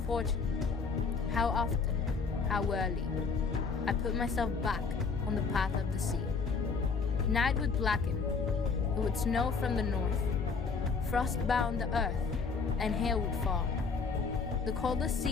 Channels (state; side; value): quieter; right; 5.0 dB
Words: how often, how early, I put myself back on the path of the sea. Night would blacken, it would snow from the north, frost bound the earth, and hail would fall. The coldest